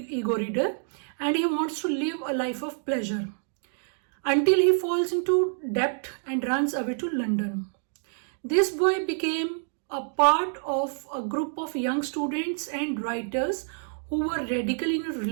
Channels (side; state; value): left; silent; 60 dB below the other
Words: reader, and he wants to live a life of pleasure until he falls into debt and runs away to London. This boy became a part of a group of young students and writers who were radical in